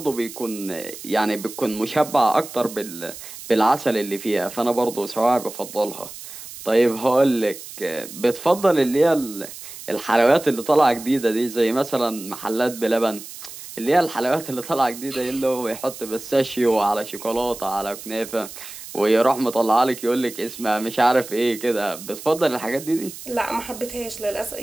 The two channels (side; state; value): right; noise; hiss, 13 dB below the sound